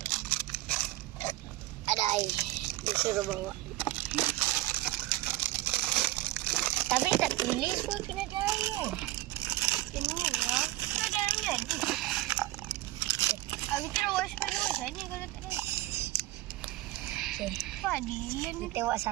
Ada air, disuruh bawa. Tapi tak tulis pun kena ada air. Ini lah, kena ada air lagi. Aku kira waspadu macam ni kalau tak ada. Padilan ni tengok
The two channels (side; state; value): left; quieter; 17.5 dB